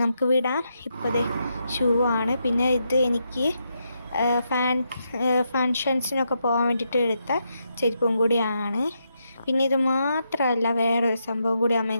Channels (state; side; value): inverted; both; correlation -0.82